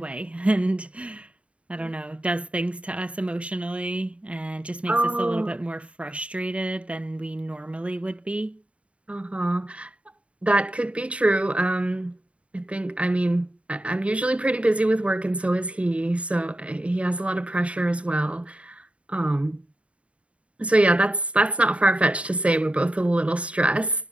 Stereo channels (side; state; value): left; late; 0.062 ms